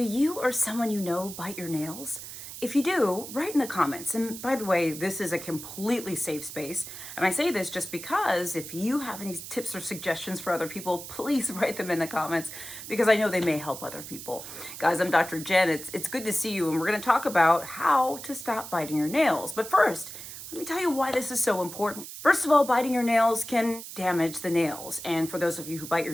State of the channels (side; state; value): right; noise; hiss, 11 dB below the sound